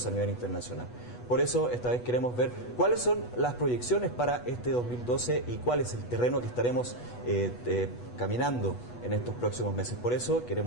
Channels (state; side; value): late; right; 8.2 ms